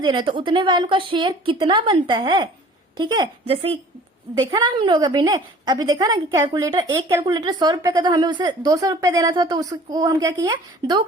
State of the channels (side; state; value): both; normal; correlation 0.48